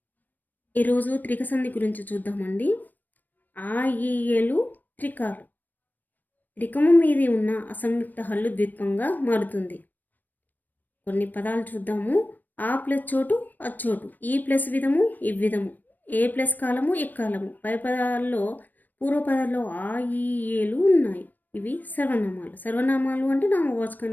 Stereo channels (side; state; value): right; late; 0.088 ms